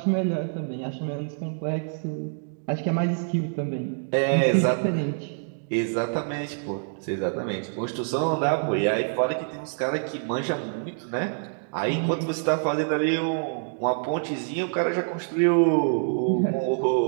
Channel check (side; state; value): left; silent; digital silence